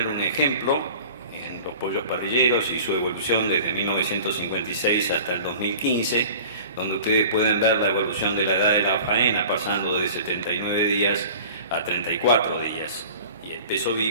un ejemplo en los pollos parrilleros y su evolución desde 1956 hasta el 2015, donde ustedes pueden ver la evolución de la edad de la faena, pasando de 79 días a 34 días. Peso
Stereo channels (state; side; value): inverted; both; correlation -0.43